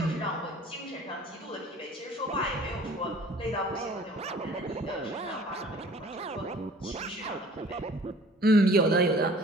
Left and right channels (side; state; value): both; normal; correlation 0.50